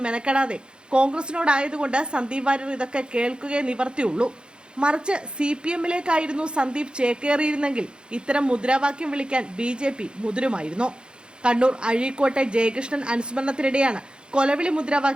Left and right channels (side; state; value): left; late; 0.051 ms